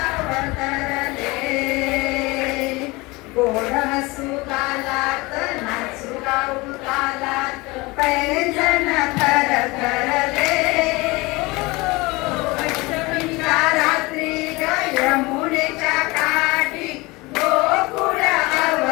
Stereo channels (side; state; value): right; quieter; 23.4 dB